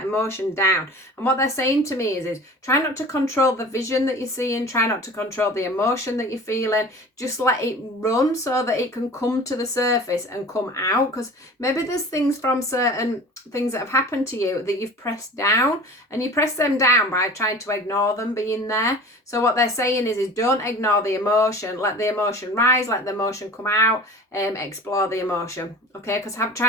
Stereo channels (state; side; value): normal; both; correlation 0.40